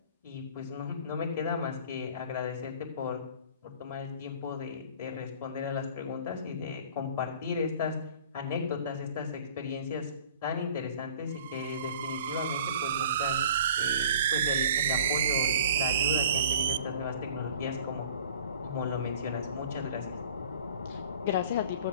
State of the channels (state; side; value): inverted; both; correlation -0.47